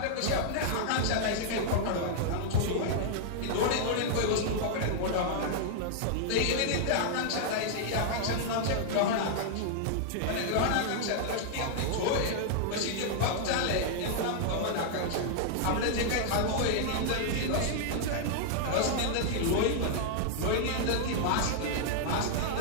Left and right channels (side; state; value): both; different; correlation -0.01